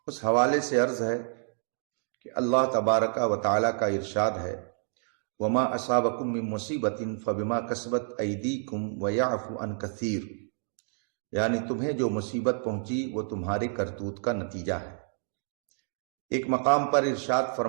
اس حوالے سے عرض ہے کہ اللہ تبارک و تعالی کا ارشاد ہے، وما اصابکم من مصیبت فبما کسبت ایدیکم ویعفو عن کثیر، یعنی تمہیں جو مصیبت پہنچی وہ تمہارے کرتوت کا نتیجہ ہے۔ ایک مقام پر ارشاد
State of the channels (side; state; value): left; silent; 59 dB below the other